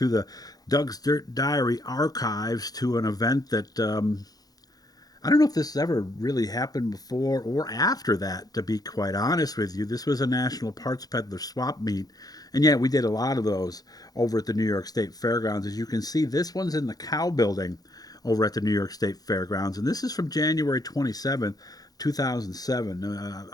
the Doug's Dirt Diary archives to an event that I don't know if this has ever really happened before or after that, to be quite honest with you. This was a National Parts Peddler Swap meet. And yeah, we did a lot of those over at the New York State Fairgrounds. As you can see, this one's in the Cow Building over at the New York State Fairgrounds. And this is from January 27th, 2007.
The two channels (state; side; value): late; right; 0.18 ms